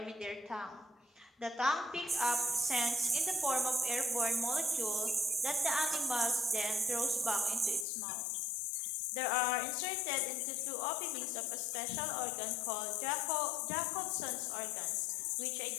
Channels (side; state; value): right; drops out; at 7.9 s